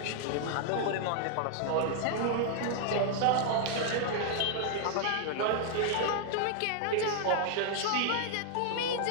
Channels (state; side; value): different; both; correlation 0.00